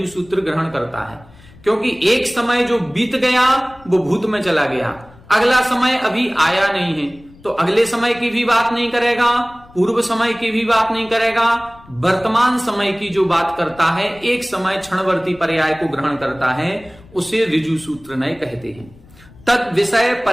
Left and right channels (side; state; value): left; noise; rumble, 24 dB below the sound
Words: सूत्र ग्रहण करता है। क्योंकि एक समय जो बीत गया वो भूत में चला गया, अगला समय अभी आया नहीं है, तो अगले समय की भी बात नहीं करेगा, पूर्व समय की भी बात नहीं करेगा, वर्तमान समय की जो बात करता है, एक समय क्षणवर्ती पर्याय को ग्रहण करता है, उसे ऋजु सूत्र नय कहते हैं। तद विषय